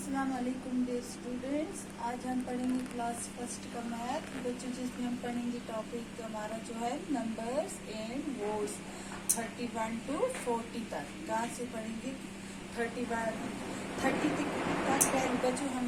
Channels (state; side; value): identical; both; correlation 1.00